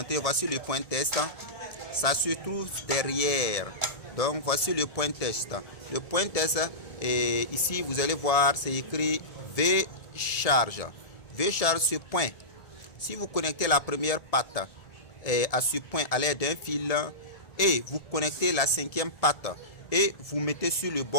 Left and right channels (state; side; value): late; right; 1.7 ms